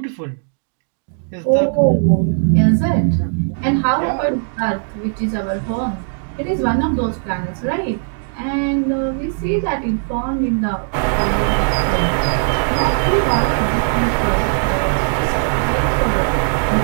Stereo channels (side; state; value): left; silent; 67 dB below the other